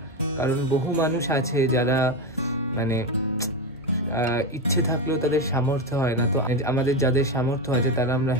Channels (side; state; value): both; normal; correlation 0.14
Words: কারণ বহু মানুষ আছে যারা মানে ইচ্ছে থাকলেও তাদের সামর্থ্য হয় না। তো আমাদের যাদের সামর্থ্য আছে তারা আমরা